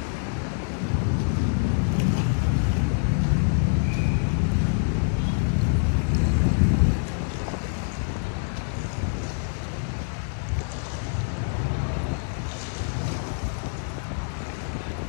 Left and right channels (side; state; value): right; silent; digital silence